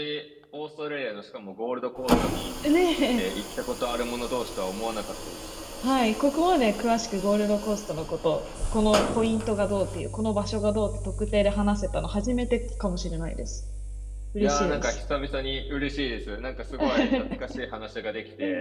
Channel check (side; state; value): both; identical; correlation 1.00